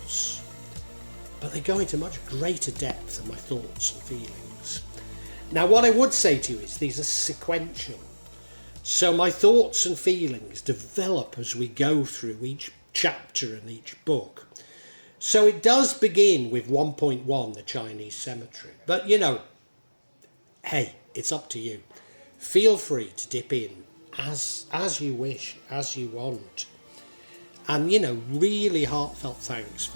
but they go into much greater depth than my thoughts and feelings. Now what I would say to you is these are sequential, so my thoughts and feelings develop as we go through each chapter and each book. So it does begin with 1.1, the Chinese cemetery, but you know, hey, it's up to you. Feel free to dip in as you wish, as you want. And you know, really heartfelt thanks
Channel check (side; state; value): both; inverted; correlation -1.00